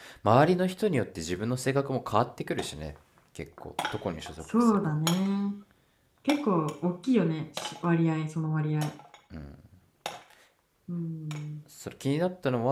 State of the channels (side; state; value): both; identical; correlation 1.00